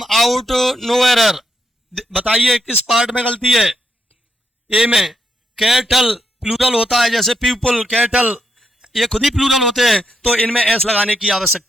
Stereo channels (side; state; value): both; normal; correlation 0.80